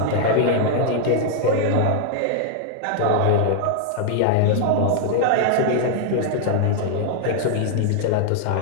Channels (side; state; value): both; different; correlation 0.00